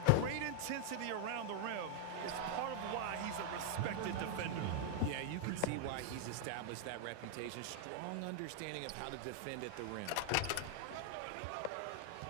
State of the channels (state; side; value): different; both; correlation 0.00